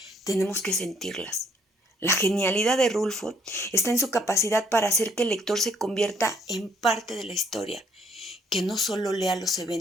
tenemos que sentirlas. La genialidad de Rulfo está en su capacidad para hacer que el lector se convierta en parte de la historia, que no solo lea los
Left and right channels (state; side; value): normal; both; correlation 0.66